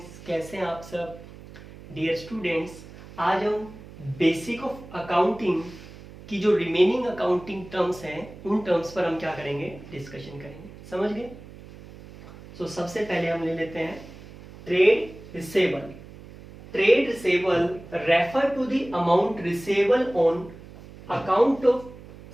कैसे हैं आप सब। डियर स्टूडेंट्स, आज हम बेसिक ऑफ अकाउंटिंग की जो रिमेनिंग अकाउंटिंग टर्म्स हैं उन टर्म्स पर हम क्या करेंगे, डिस्कशन करेंगे। समझ गए। सो सबसे पहले हम ले लेते हैं trade receivable. Trade receivable refer to the amount receivable on account of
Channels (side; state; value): right; noise; hum, 17 dB below the sound